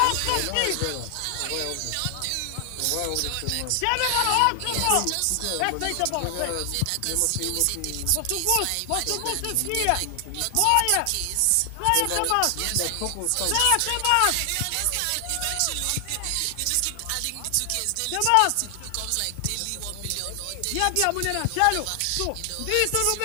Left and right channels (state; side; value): different; both; correlation 0.00